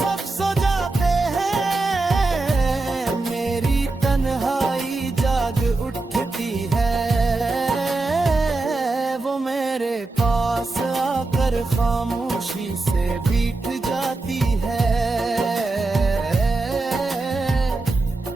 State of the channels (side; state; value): left; quieter; 3.3 dB